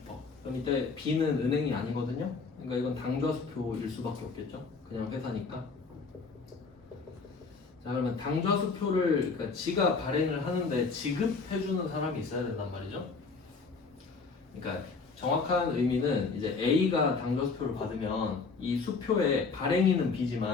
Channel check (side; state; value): right; quieter; 4.6 dB